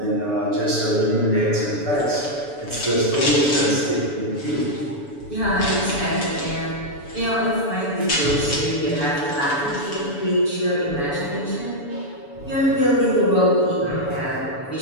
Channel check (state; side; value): late; right; 7.0 ms